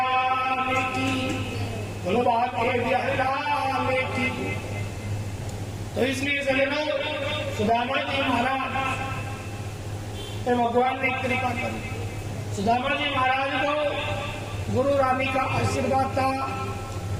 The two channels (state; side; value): identical; both; correlation 1.00